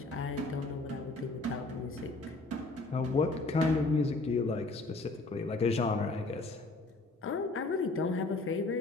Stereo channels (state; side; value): quieter; right; 3.2 dB